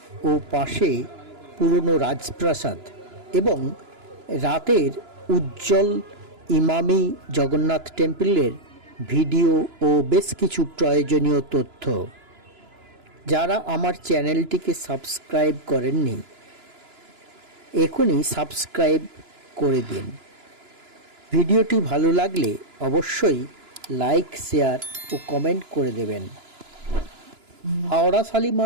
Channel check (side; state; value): left; late; 2.9 ms